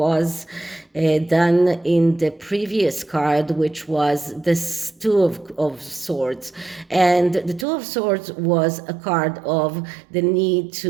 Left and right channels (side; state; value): left; drops out; at 7.7 s